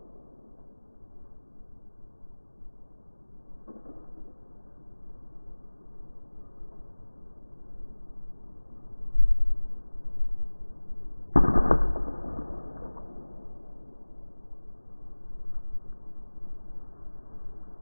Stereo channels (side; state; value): both; inverted; correlation -1.00